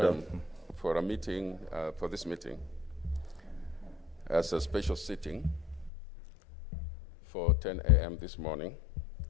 for a meeting, for this meeting, as a special sitting for 10 a.m. this morning.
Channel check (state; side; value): drops out; right; at 5.9 s